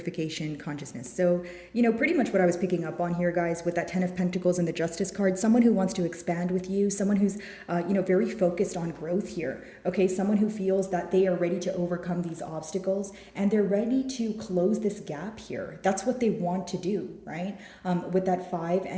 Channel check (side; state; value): both; identical; correlation 1.00